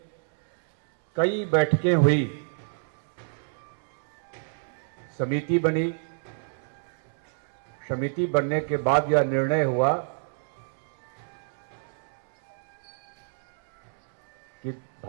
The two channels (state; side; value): silent; left; 60 dB below the other